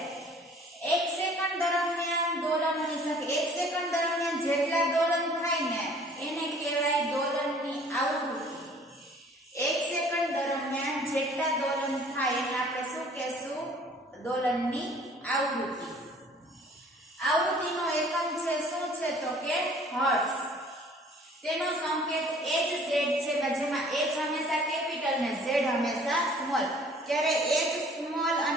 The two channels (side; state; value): both; normal; correlation 0.53